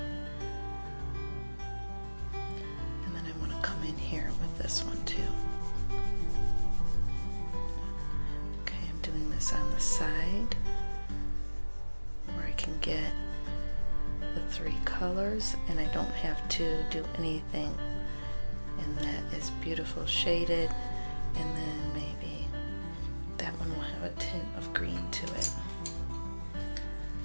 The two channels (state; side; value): inverted; both; correlation -1.00